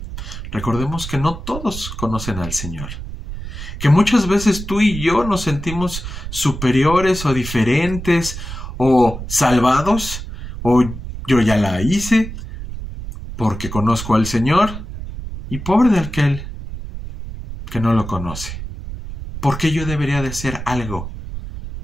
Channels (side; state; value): right; noise; rumble, 9 dB below the sound